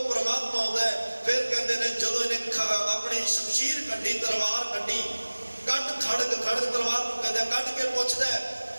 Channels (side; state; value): both; inverted; correlation -1.00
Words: ਪਰਮਾਤਮਾ ਆਉਂਦਾ ਹੈ। ਫਿਰ ਕਹਿੰਦੇ ਨੇ ਜਦੋਂ ਇਹਨੇ ਆਪਣੀ ਸ਼ਮਸ਼ੀਰ ਕੱਢੀ, ਤਲਵਾਰ ਕੱਢੀ, ਖੜਗ ਤਲਵਾਰ ਨੂੰ ਕਹਿੰਦੇ ਕੱਢ ਕੇ ਪੁੱਛਦਾ